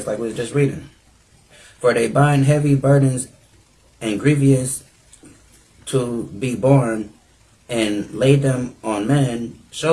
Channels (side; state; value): both; identical; correlation 1.00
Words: like we was just reading. For they bind heavy burdens and grievous to be borne, and lay them on men's